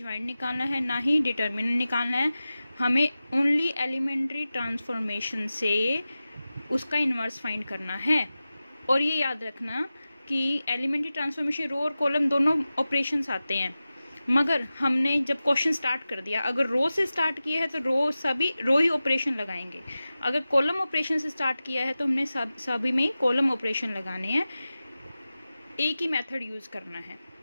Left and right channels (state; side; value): inverted; both; correlation -0.95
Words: निकालना है ना ही डिटर्मिनेंट निकालना है। हमें ओनली एलिमेंट्री ट्रांसफॉर्मेशन से उसका इनवर्स फाइंड करना है। और ये याद रखना कि एलिमेंट्री ट्रांसफॉर्मेशन रो और कॉलम दोनों ऑपरेशंस आते हैं। मगर हमने जब क्वेश्चन स्टार्ट कर दिया, अगर रो से स्टार्ट किया है तो रो ही ऑपरेशन लगाएंगे। अगर कॉलम ऑपरेशन से स्टार्ट किया है तो हमने सभी में कॉलम ऑपरेशन लगाने हैं। एक ही मेथड यूज करना है,